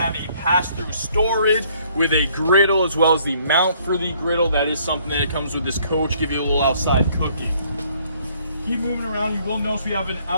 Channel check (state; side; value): inverted; both; correlation -0.64